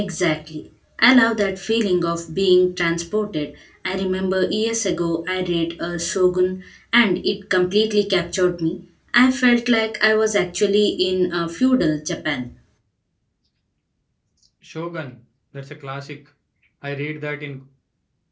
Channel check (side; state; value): both; identical; correlation 1.00